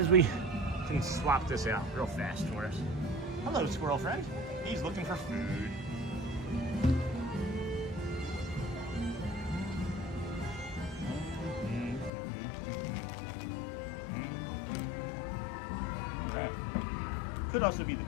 we can swap this out real fast for us. Hello, squirrel friend. He's looking for food. Could also be the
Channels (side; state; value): right; drops out; at 12.1 s